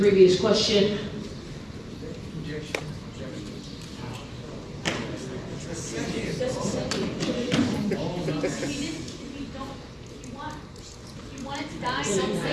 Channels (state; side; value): identical; both; correlation 1.00